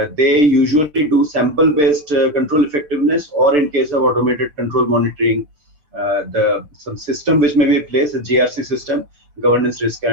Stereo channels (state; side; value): late; left; 6.7 ms